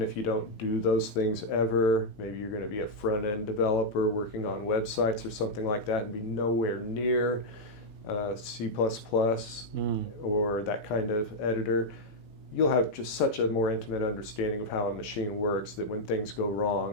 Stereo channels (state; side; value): late; right; 15 ms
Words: if you don't do those things ever, maybe you're going to be a front-end developer working on websites or something like that and be nowhere near C++ or that kind of editor, you'll have just such a more intimate understanding of how a machine works that when things go